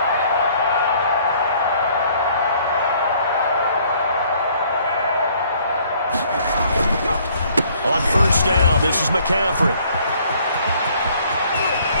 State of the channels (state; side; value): inverted; both; correlation -0.61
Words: On first down, this is McCaffrey.